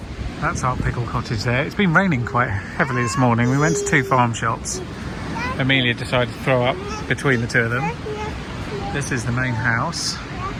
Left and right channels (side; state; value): both; identical; correlation 1.00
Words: That's our pickle cottage there. It's been raining quite heavily this morning. We went to 2 farm shops. Amelia decided to throw up between the 2 of them. This is the main house.